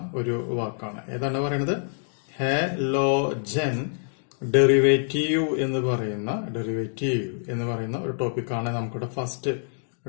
ഒരു വാക്കാണ്. ഏതാണ് പറയുന്നത്? ഹാലോജൻ ഡെറിവേറ്റീവ് എന്ന് പറയുന്ന ഒരു ടോപ്പിക്കാണ് നമുക്കിവിടെ ഫസ്റ്റ്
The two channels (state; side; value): silent; right; digital silence